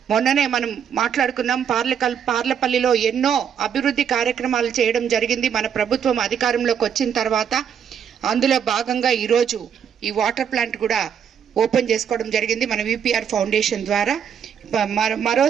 మొన్ననే మనం మాట్లాడుకున్నాం. పార్లపల్లిలో ఎన్నో అభివృద్ధి కార్యక్రమాలు చేయడం జరిగింది మన ప్రభుత్వం అధికారంలోకి వచ్చిన తర్వాత. అందులో భాగంగా ఈరోజు ఈ వాటర్ ప్లాంట్ కూడా ఓపెన్ చేసుకోవడం జరిగింది మన విపిఆర్ ఫౌండేషన్ ద్వారా.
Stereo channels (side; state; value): left; quieter; 8.1 dB